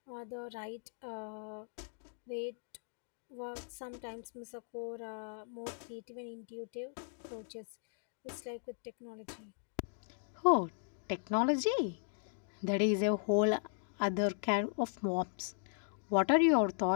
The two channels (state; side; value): silent; right; digital silence